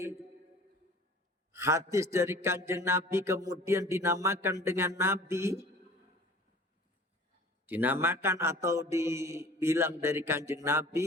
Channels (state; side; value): normal; both; correlation 0.46